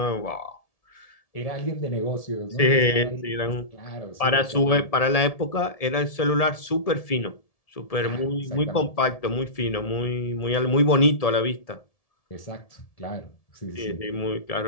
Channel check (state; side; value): late; right; 1.7 ms